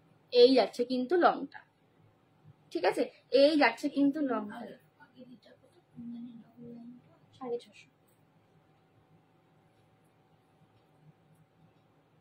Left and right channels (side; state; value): both; identical; correlation 1.00